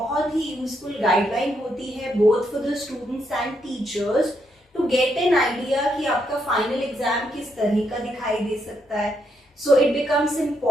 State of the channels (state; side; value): normal; both; correlation 0.78